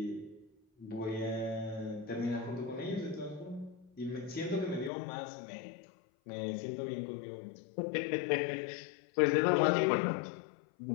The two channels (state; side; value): drops out; right; at 4.9 s